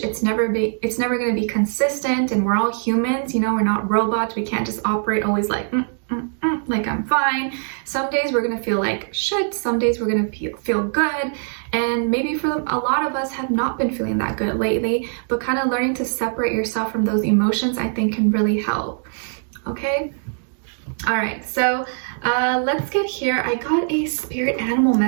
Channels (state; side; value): silent; left; 64 dB below the other